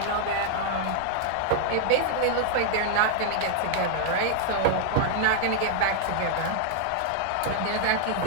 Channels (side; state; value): both; different; correlation -0.01